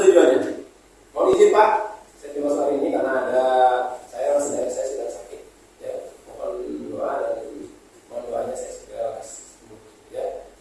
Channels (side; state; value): both; identical; correlation 1.00